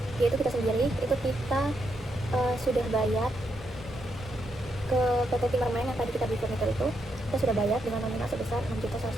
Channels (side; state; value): both; normal; correlation 0.80